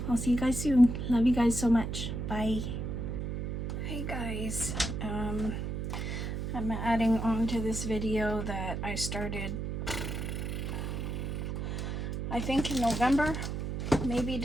I'll see you guys soon. Love you guys so much. Bye. Hey guys, I'm adding on to this video that I started, I think in November, maybe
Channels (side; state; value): right; noise; hum, 3 dB below the sound